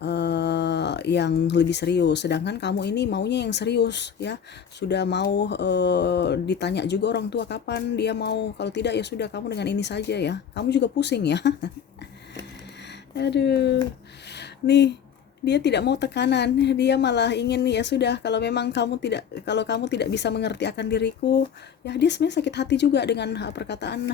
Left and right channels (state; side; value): quieter; right; 8.0 dB